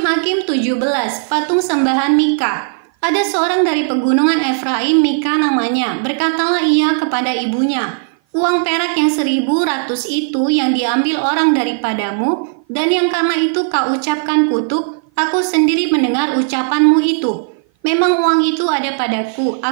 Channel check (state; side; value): silent; left; 55 dB below the other